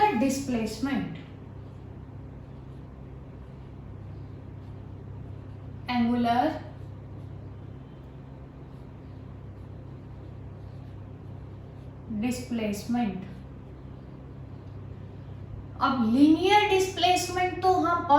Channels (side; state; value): both; identical; correlation 1.00